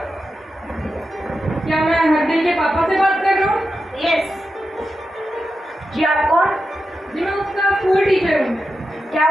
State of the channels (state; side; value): normal; both; correlation 0.89